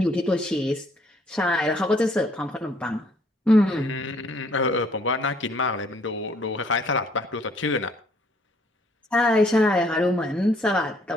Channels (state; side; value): normal; both; correlation 0.64